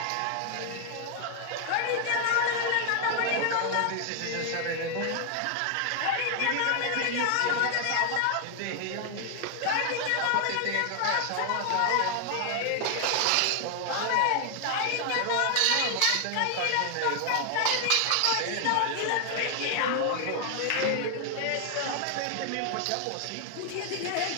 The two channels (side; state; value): both; different; correlation 0.00